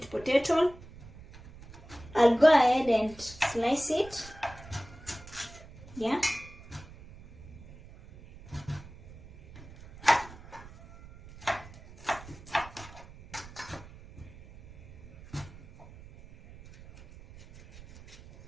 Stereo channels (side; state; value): right; noise; rumble, 18 dB below the sound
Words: potato. I'll go ahead and slice it. Yeah.